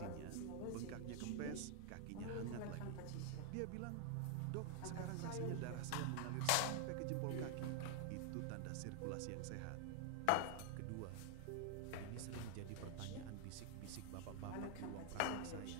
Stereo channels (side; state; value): both; different; correlation 0.00